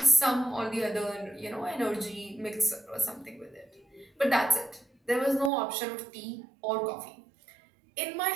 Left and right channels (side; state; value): left; drops out; at 5.5 s